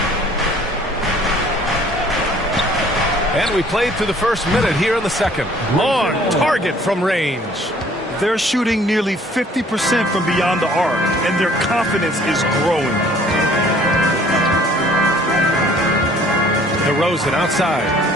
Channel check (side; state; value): both; normal; correlation 0.56